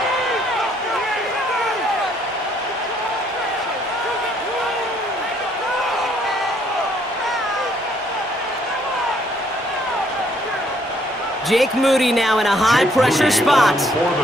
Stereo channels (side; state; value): both; normal; correlation 0.67